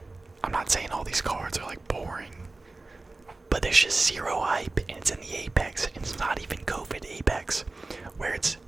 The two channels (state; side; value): quieter; left; 3.2 dB